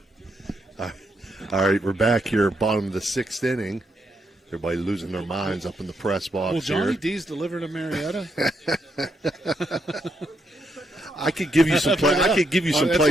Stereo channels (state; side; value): normal; both; correlation 0.79